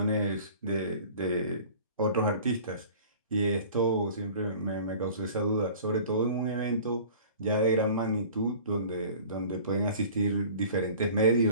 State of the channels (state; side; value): inverted; both; correlation -0.45